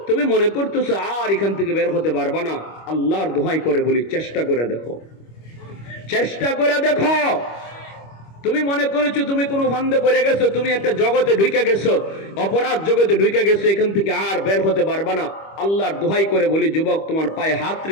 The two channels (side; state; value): right; late; 25 ms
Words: তুমি মনে করতেছো আর এখান থেকে বের হতে পারবা না, আল্লাহর দোহাই করে বলি চেষ্টা করে দেখো, চেষ্টা করে দেখো। তুমি মনে করেছো তুমি কোনো ফান্দে পড়ে গেছো, তুমি একটা জগতে ঢুকে গেছো, অপরাধ জগতে ঢুকে গেছো, এখান থেকে আর বের হতে পারবা না। আল্লাহর দোহাই করে বলি যুবক, তোমার পায়ে হাত